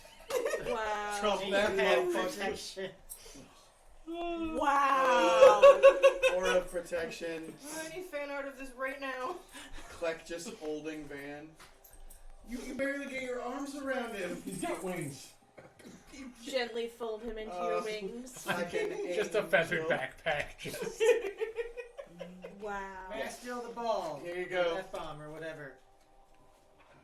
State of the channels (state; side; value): identical; both; correlation 1.00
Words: Wow. Trouble that motherfucker. Protection. Wow. Aura of protection. I need fan art of this right now. Kleck just holding Van. You can barely get your arms around him. He's got wings. Gently fold him into your wings. Like an Just a feathered angel. backpack. Just. Wow. May I steal the ball? Here you go. F-bomb or whatever.